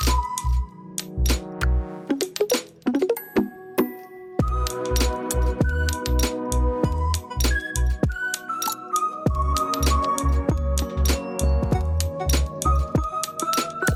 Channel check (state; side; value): identical; both; correlation 1.00